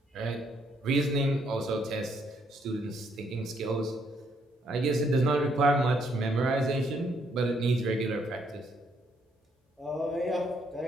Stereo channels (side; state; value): both; normal; correlation 0.71